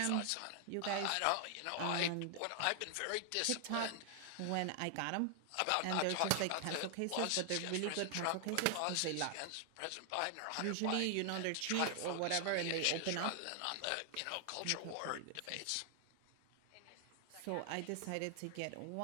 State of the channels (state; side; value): different; both; correlation 0.00